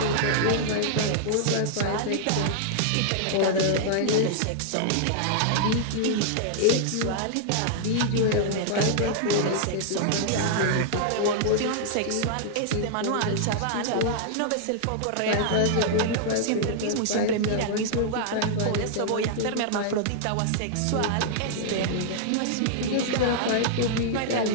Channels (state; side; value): different; both; correlation -0.01